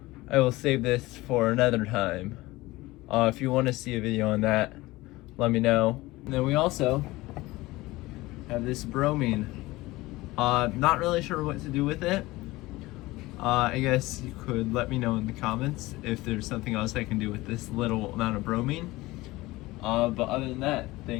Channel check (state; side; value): quieter; right; 19.7 dB